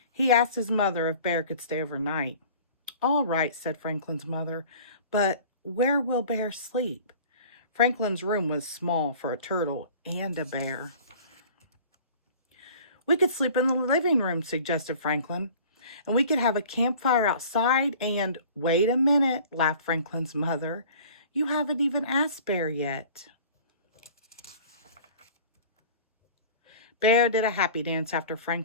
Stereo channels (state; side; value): inverted; both; correlation -0.45